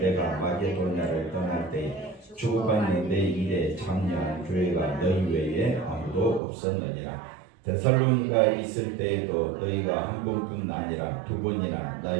마게도냐를 떠날 때 주고받는 내 일에 참여한 교회가 너희 외에 아무도 없었느니라. 데살로니가 있을 때에도 너희가 한 번뿐 아니라 두 번이나 나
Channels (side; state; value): left; drops out; at 6.4 s